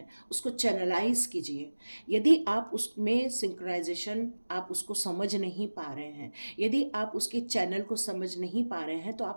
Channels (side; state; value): both; inverted; correlation -1.00